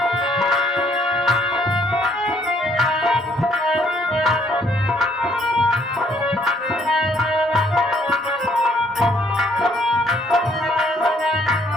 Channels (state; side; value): normal; both; correlation 0.66